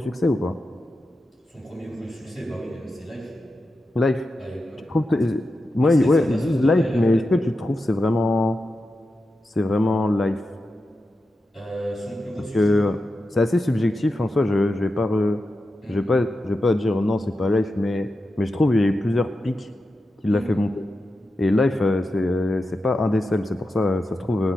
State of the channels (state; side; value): normal; both; correlation 0.90